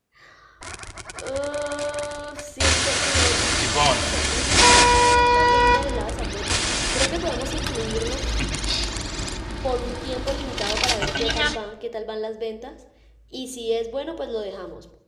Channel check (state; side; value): identical; both; correlation 1.00